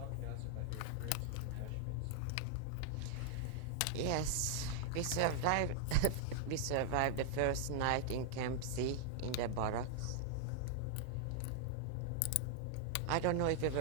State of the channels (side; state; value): both; different; correlation -0.01